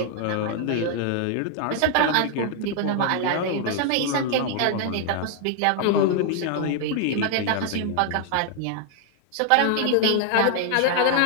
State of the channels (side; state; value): both; different; correlation 0.00